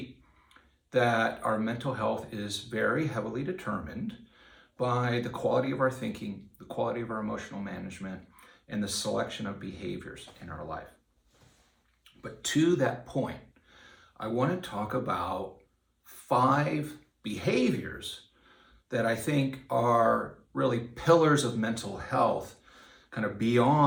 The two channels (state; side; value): identical; both; correlation 1.00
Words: that our mental health is very heavily determined by the quality of our thinking, the quality of our emotional management, and the selection of behaviors in our life. But to that point, I want to talk about 5 behaviors that I think are really pillars of mental health, kind of